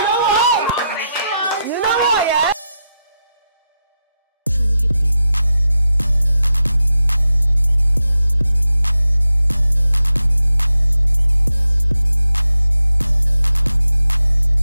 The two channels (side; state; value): both; inverted; correlation -0.88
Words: what? You know what, yeah?